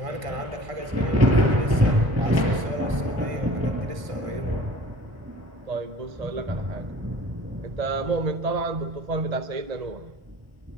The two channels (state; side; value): late; left; 1.5 ms